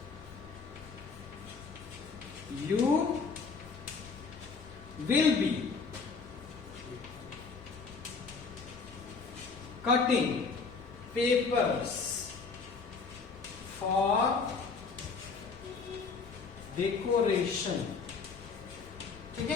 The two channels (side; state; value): right; quieter; 4.8 dB